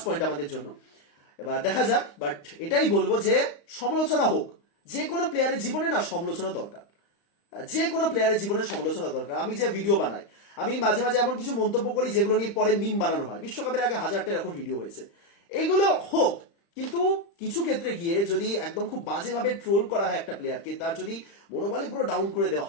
পয়েন্ট আমাদের জন্য। এবার দেখা যাক, বাট এটাই বলবো যে সমালোচনা হোক, যে কোনো প্লেয়ারের জীবনে না সমালোচনা দরকার, যে কোনো প্লেয়ারের জীবনে সমালোচনা দরকার। আমি যে ভিডিও বানাই, আমি মাঝে মাঝে এমন কিছু মন্তব্য করি যেগুলো নিয়ে পরে মিম বানানো হয়। বিশ্বকাপের আগে 1000টা এরকম ভিডিও হয়েছে, এইগুলো হোক, কিন্তু কিছু ক্ষেত্রে গিয়ে যদি একদম খুব বাজেভাবে ট্রোল করা হয় একটা প্লেয়ারকে, তার যদি মনোবলে পুরো ডাউন করে দেওয়া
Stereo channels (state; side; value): late; right; 35 ms